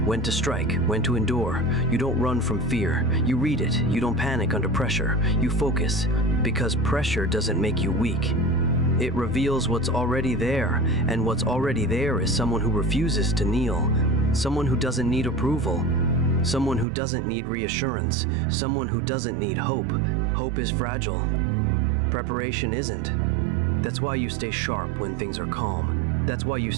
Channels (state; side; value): drops out; left; at 16.9 s